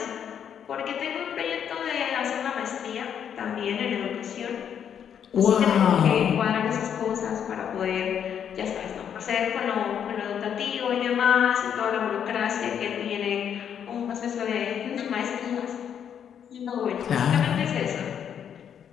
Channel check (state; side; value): quieter; right; 8.5 dB